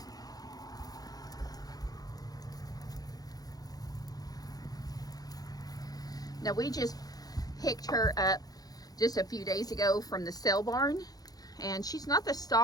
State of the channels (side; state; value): right; late; 0.18 ms